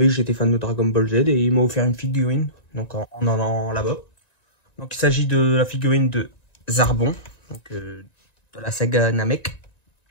que j'étais fan de Dragon Ball Z et il m'a offert une figurine, donc en allant là-bas. Donc il s'agit de la figurine de Zarbon, de la saga Namek.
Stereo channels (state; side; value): late; right; 1.9 ms